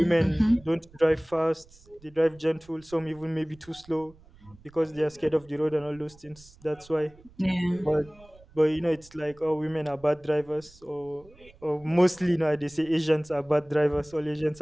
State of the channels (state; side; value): noise; right; rumble, 25 dB below the sound